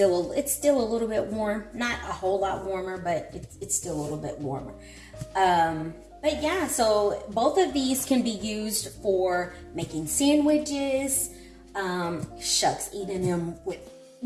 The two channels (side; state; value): both; identical; correlation 1.00